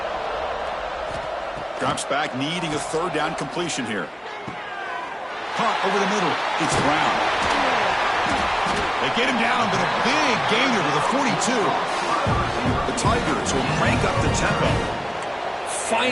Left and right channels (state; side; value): identical; both; correlation 1.00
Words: Drops back, needing a third down completion here. Caught over the middle. It's Brown. They get him down, but a big gainer to the 42. The Tigers will crank up the tempo.